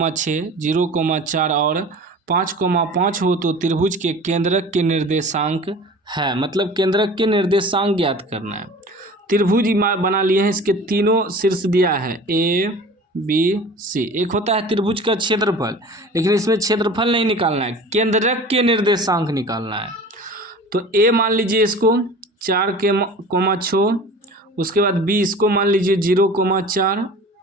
0,4 और 5,5 हो तो त्रिभुज के केंद्रक के निर्देशांक है, मतलब केंद्रक के निर्देशांक ज्ञात करना है। त्रिभुज बना लिए हैं, इसके तीनों शीर्ष दिया है ए बी सी। एक होता है त्रिभुज का क्षेत्रफल, लेकिन इसमें क्षेत्रफल नहीं निकालना है, केंद्रक के निर्देशांक निकालना है। तो ए मान लीजिए इसको 4,6, उसके बाद बी इसको मान लीजिए 0,4,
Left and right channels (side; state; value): both; normal; correlation 0.40